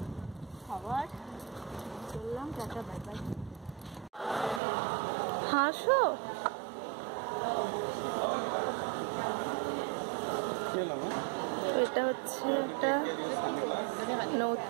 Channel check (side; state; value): left; drops out; at 4.6 s